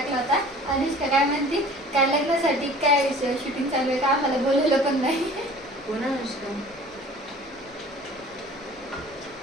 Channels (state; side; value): noise; left; rumble, 28 dB below the sound